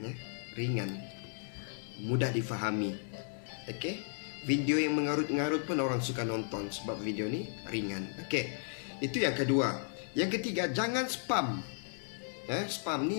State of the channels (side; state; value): right; silent; digital silence